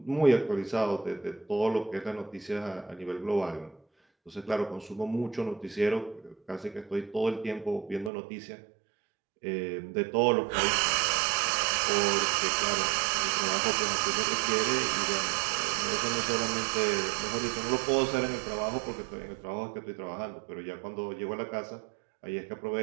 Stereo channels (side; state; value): left; drops out; at 8.1 s